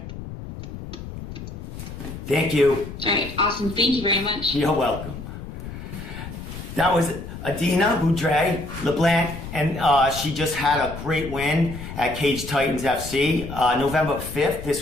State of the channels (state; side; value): noise; left; rumble, 10 dB below the sound